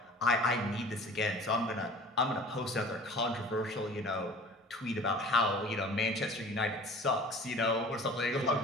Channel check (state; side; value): normal; both; correlation 0.44